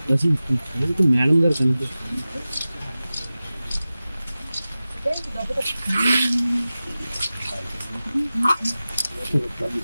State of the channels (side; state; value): both; inverted; correlation -0.96